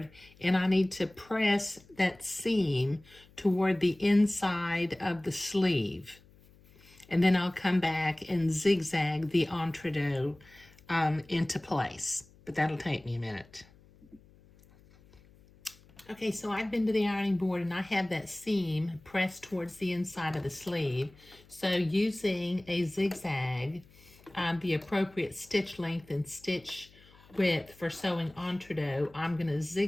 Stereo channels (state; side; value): noise; left; hum, 26 dB below the sound